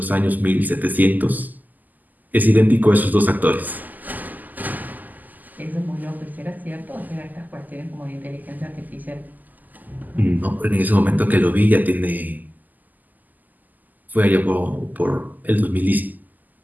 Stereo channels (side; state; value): left; late; 0.083 ms